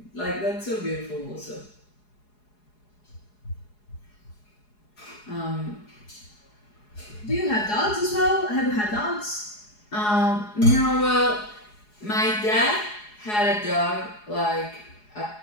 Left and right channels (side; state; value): right; late; 4.8 ms